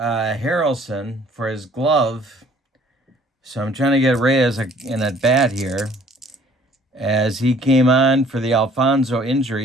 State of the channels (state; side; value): normal; both; correlation 0.57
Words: for his glove, so I'm trying to get Reyes in at bat here, as he came on for the Alfonso